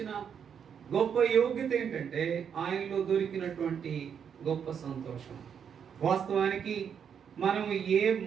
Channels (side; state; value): left; quieter; 7.6 dB